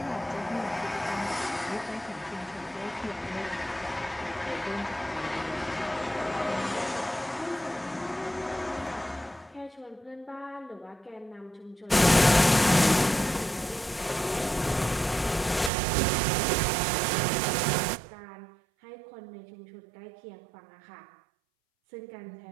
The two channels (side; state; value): left; drops out; at 15.7 s